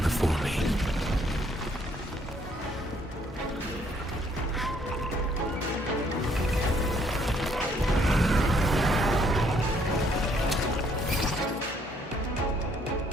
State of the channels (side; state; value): both; normal; correlation 0.66